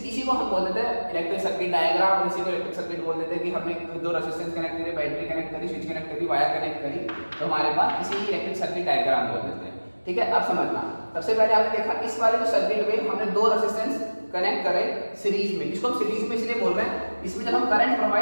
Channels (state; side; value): inverted; both; correlation -1.00